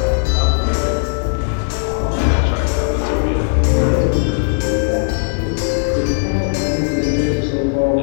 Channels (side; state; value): right; silent; digital silence